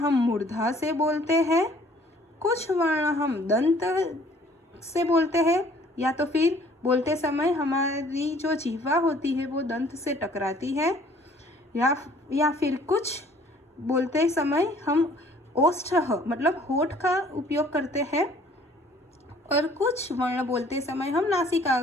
मूर्धा से बोलते हैं, कुछ वर्ण हम दंत से बोलते हैं, या तो फिर बोलते समय हमारी जो जिह्वा होती है वो दंत से टकराती है, या फिर कुछ बोलते समय हम ओष्ठ मतलब होठ का उपयोग करते हैं, और कुछ वर्ण बोलते समय हम नासिका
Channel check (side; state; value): both; normal; correlation 0.56